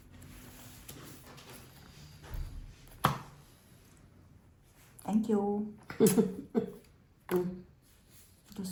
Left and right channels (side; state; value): both; identical; correlation 1.00